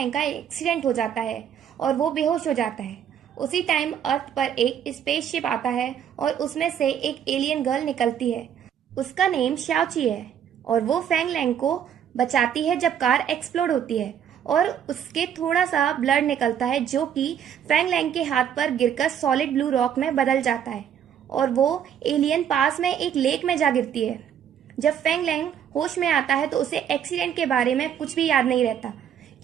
का एक्सीडेंट हो जाता है और वो बेहोश हो जाता है। उसी टाइम अर्थ पर एक स्पेसशिप आता है और उसमें से एक एलियन गर्ल निकलती है। उसका नेम श्याओची है और वो फैंग लैंग को बचाती है जब कार एक्सप्लोड होती है और उसके थोड़ा सा ब्लड निकलता है जो कि फैंग लैंग के हाथ पर गिरकर सॉलिड ब्लू रॉक में बदल जाता है और वो एलियन पास में एक लेक में जा गिरती है। जब फैंग लैंग होश में आता है तो उसे एक्सीडेंट के बारे में कुछ भी याद नहीं रहता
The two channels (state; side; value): quieter; left; 9.0 dB